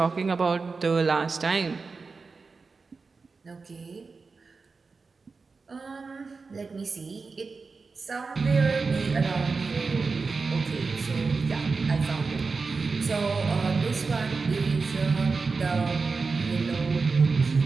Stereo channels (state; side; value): quieter; left; 4.4 dB